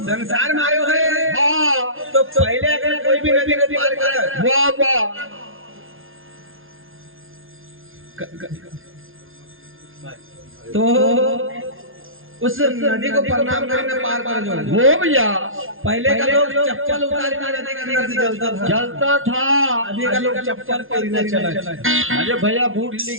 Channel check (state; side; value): late; left; 0.60 ms